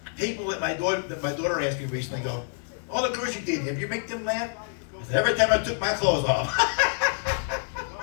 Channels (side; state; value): right; silent; 56 dB below the other